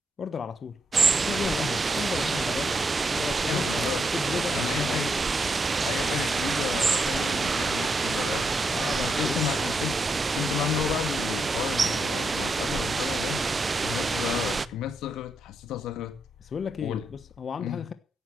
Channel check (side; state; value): both; normal; correlation 0.81